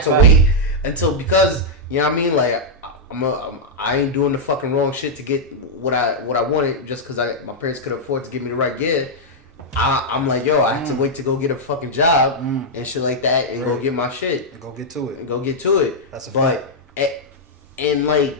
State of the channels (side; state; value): both; normal; correlation -0.05